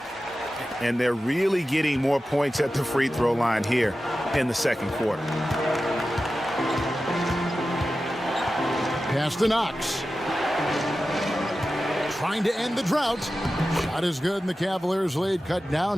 And they're really getting more points at the free throw line here in the second quarter. Pass to Knox. Trying to end the drought. Shot is good, and the Cavaliers lead cut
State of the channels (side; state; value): both; normal; correlation 0.93